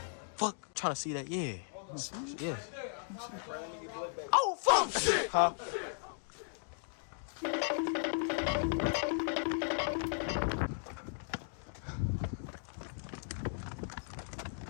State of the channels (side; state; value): right; silent; digital silence